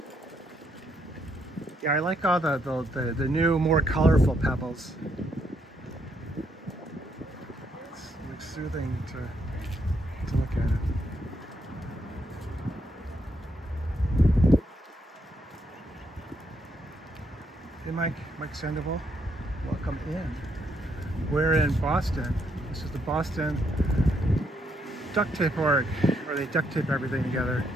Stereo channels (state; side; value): normal; both; correlation 0.75